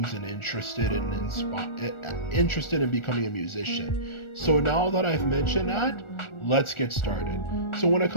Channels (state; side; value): late; right; 1.4 ms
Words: interested in becoming a musician. So now that I've mentioned that, let's get started. So when it